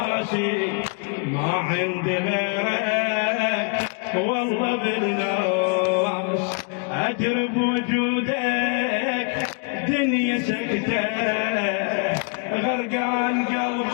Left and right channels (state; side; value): quieter; right; 37.2 dB